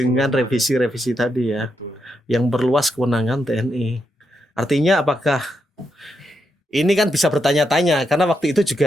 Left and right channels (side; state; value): both; normal; correlation 0.83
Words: revisi-revisi tadi ya. Betul. Yang berluas kewenangan TNI. Artinya apakah ini kan bisa bertanya-tanya karena waktu itu